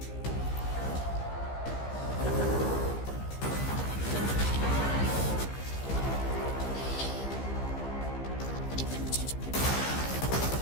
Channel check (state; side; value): late; right; 15 ms